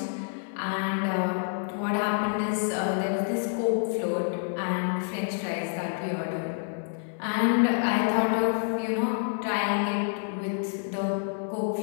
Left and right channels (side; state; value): right; silent; 59 dB below the other